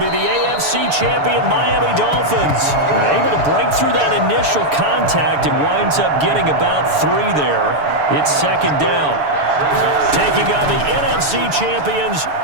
the AFC champion Miami Dolphins. They're able to break through that initial contact and winds up getting about 3 there. It's second down. Taking on the NFC champions,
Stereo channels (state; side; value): late; left; 6.9 ms